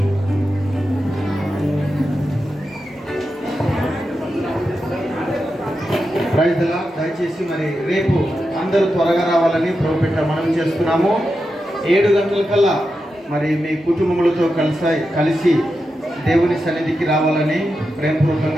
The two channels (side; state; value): both; normal; correlation 0.89